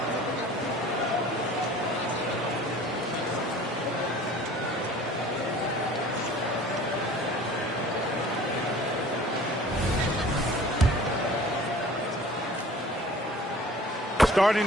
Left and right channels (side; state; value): both; normal; correlation 0.46